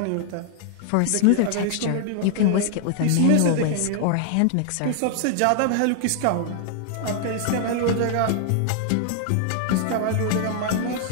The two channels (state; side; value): different; both; correlation 0.00